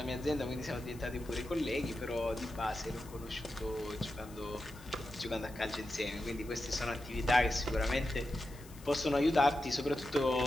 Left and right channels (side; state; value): left; noise; hiss, 21 dB below the sound